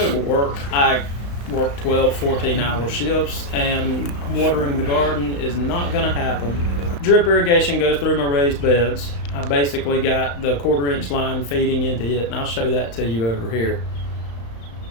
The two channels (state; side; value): late; right; 35 ms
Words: to work, I work 12, 14-hour shifts, and watering the garden is not going to happen. Drip irrigation goes through my raised beds. I basically got the 1/4-inch line feeding into it, and I'll show that to you over here.